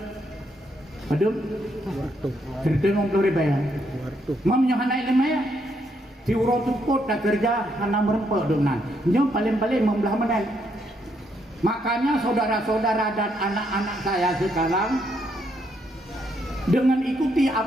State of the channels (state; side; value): normal; both; correlation 0.75